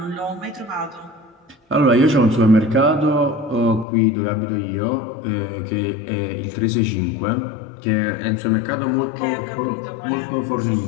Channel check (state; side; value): drops out; right; at 3.9 s